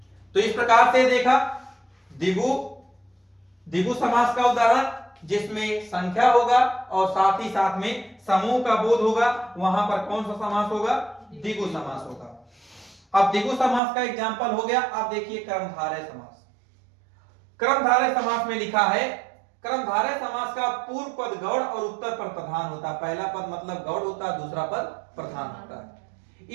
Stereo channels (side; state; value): left; drops out; at 13.8 s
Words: तो इस प्रकार से देखा द्विगु समास का उदाहरण, जिसमें संख्या होगा और साथ ही साथ में समूह का बोध होगा, वहां पर कौन सा समास होगा, द्विगु समास होगा। अब द्विगु समास का एग्जाम्पल हो गया। अब देखिए कर्मधारय समास। कर्मधारय समास में लिखा है, कर्मधारय समास का पूर्व पद गौड़ और उत्तर पर प्रधान होता है। पहला पद मतलब गौड़ होता है, दूसरा पद प्रधान होता है।